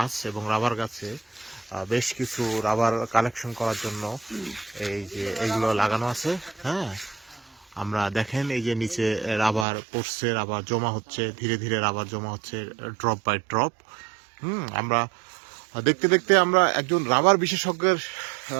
এবং রাবার গাছে বেশ কিছু রাবার কালেকশন করার জন্য এই যে এইগুলো লাগানো আছে। হ্যাঁ, আমরা দেখেন এই যে নিচে রাবার পড়ছে, রাবার জমা হচ্ছে, ধীরে ধীরে রাবার জমা হচ্ছে ড্রপ বাই ড্রপ। আমরা দেখতে দেখতে আমরা একজন রাবার বিশেষজ্ঞের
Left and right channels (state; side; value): drops out; left; at 9.7 s